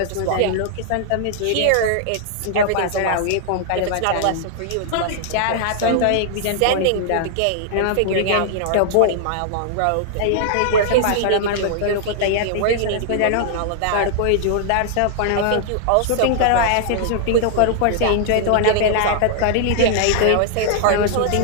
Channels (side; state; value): both; different; correlation -0.01